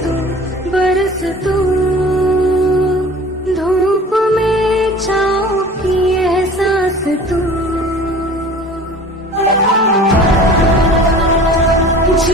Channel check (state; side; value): normal; both; correlation 0.42